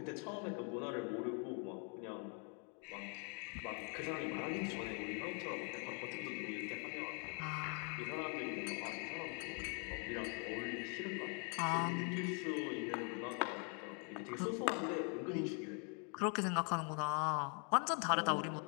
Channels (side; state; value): right; quieter; 38.1 dB